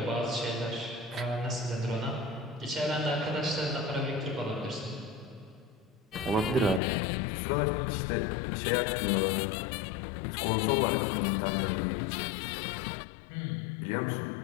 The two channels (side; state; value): right; drops out; at 6.8 s